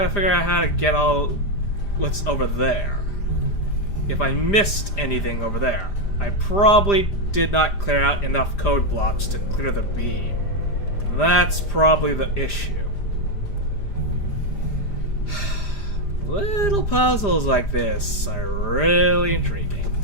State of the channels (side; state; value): right; late; 5.0 ms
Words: figure out how to get all what's over there. if I missed anything over there. I probably did not clear out enough code blocks to clear the beam. That's probably the issue. Little puzzles like this are really intriguing.